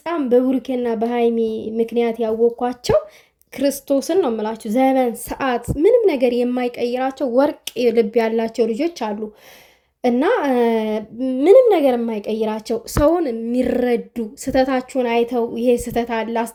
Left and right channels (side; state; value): both; identical; correlation 1.00